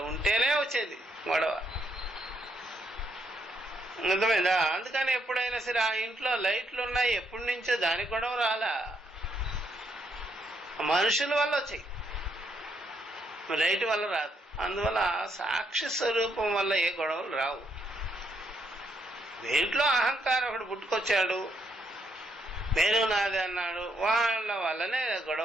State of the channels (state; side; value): normal; both; correlation 0.75